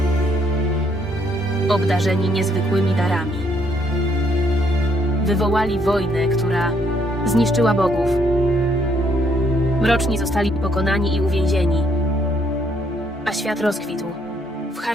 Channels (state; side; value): normal; both; correlation 0.70